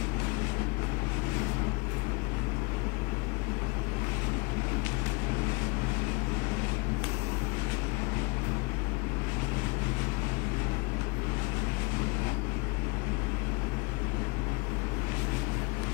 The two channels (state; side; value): quieter; right; 28.7 dB